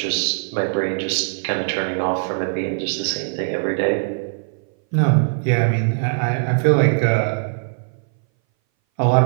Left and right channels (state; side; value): silent; left; 60 dB below the other